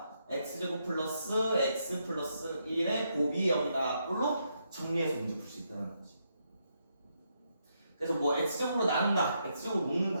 x제곱 플러스 x 플러스 1의 곱이 여기다 꼴로 정리해서 문제 풀 수 있다는 거지. 그래서 뭐 x제곱으로 나눈다, x제곱으로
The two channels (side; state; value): both; inverted; correlation -0.79